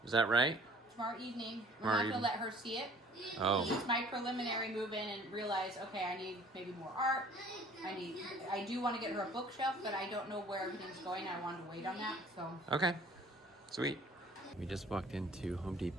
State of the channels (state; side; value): normal; both; correlation 0.52